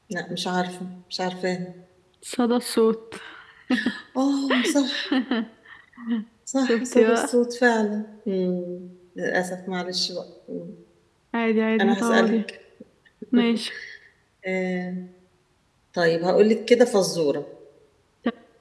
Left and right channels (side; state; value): both; identical; correlation 1.00